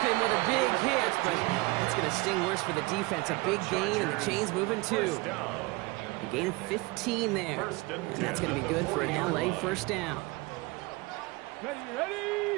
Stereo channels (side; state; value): left; quieter; 23.9 dB